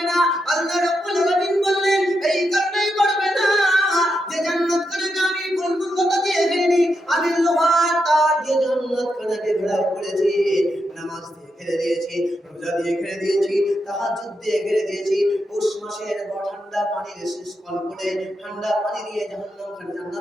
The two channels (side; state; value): both; normal; correlation 0.84